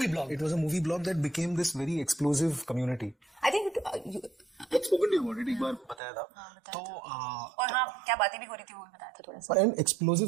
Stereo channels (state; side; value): drops out; left; at 6.0 s